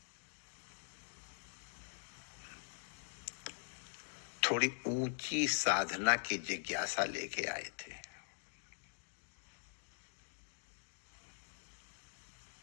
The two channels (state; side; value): silent; right; digital silence